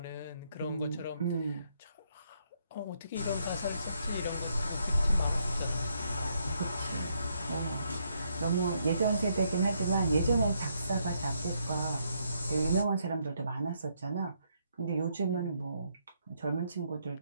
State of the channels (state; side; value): inverted; both; correlation -0.74